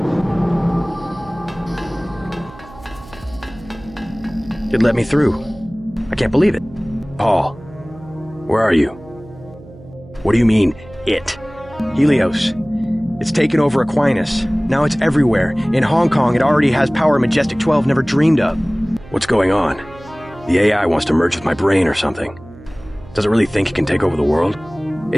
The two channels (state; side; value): noise; right; hum, 20 dB below the sound